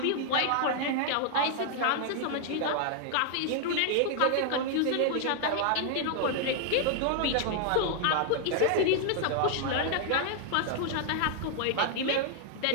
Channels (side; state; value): both; different; correlation 0.00